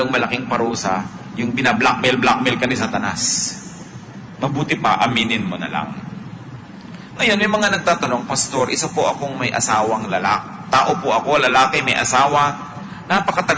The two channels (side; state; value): both; identical; correlation 1.00